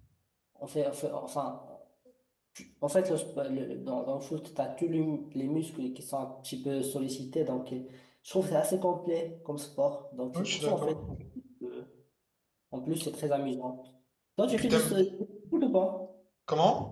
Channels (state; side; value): identical; both; correlation 1.00